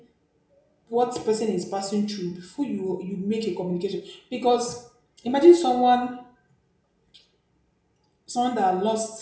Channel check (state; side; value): identical; both; correlation 1.00